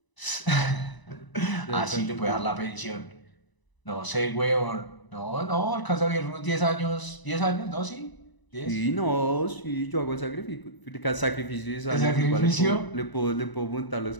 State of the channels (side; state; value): right; late; 1.0 ms